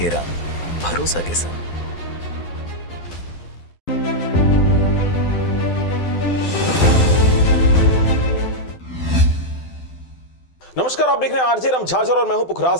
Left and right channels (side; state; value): right; late; 12 ms